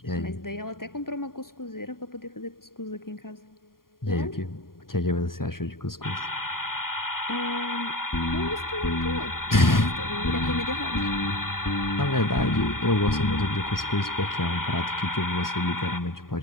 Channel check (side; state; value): right; late; 0.91 ms